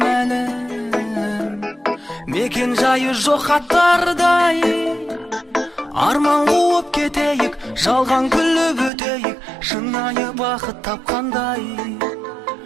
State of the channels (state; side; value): drops out; left; at 8.9 s